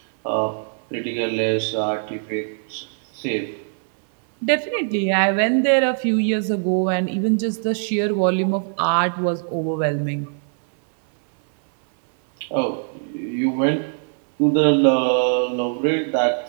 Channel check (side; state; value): left; silent; 61 dB below the other